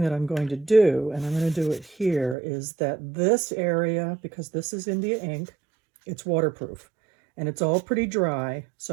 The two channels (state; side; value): drops out; left; at 2.4 s